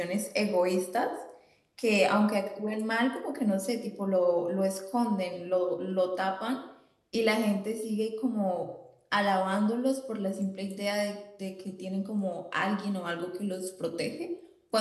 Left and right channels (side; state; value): both; identical; correlation 1.00